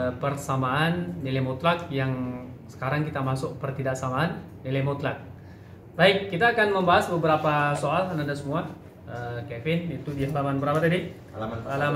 persamaan nilai mutlak yang sekarang kita masuk pertidaksamaan nilai mutlak. Baik, kita akan membahas beberapa soal anak-anak semua. Kevin, itu di halaman berapa tadi?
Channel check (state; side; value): identical; both; correlation 1.00